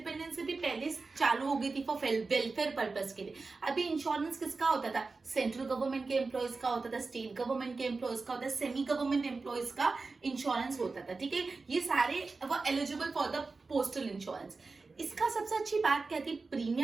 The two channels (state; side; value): quieter; left; 4.0 dB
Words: से भी पहले चालू हो गई थी फॉर वेलफेयर पर्पस के लिए. अभी इंश्योरेंस किसका होता था? सेंट्रल गवर्नमेंट के एम्प्लॉयज का होता था, स्टेट गवर्नमेंट के एम्प्लॉयज का होता था, सेमी गवर्नमेंट एम्प्लॉयज का इंश्योरेंस होता था. ठीक है, ये सारे वो eligible for the postal insurance. इसका सबसे अच्छी बात क्या थी?